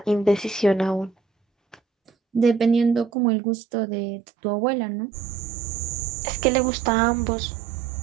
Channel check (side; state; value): left; drops out; at 3.1 s